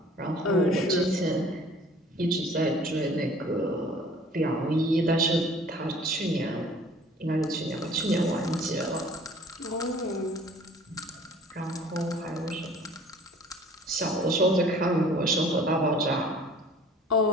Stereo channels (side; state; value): both; normal; correlation 0.50